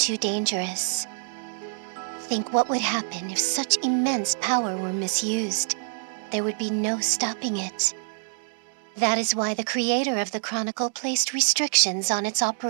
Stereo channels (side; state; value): left; silent; 61 dB below the other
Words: dangerous. Think what would happen if such immense power were misused. There would be no stopping it. That is why the creator of the Chronicle placed restrictions on its